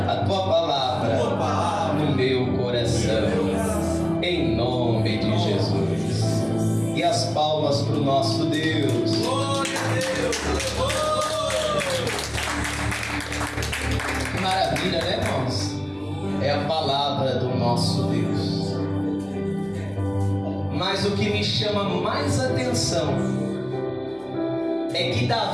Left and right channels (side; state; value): right; noise; hum, 30 dB below the sound